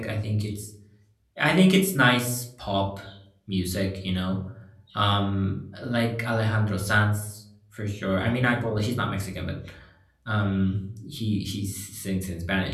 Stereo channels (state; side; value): identical; both; correlation 1.00